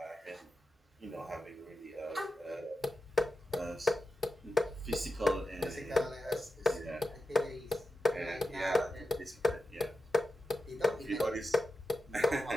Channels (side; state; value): both; normal; correlation 0.89